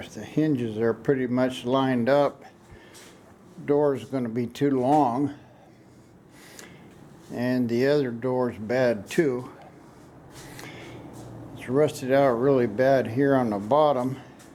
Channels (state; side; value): identical; both; correlation 1.00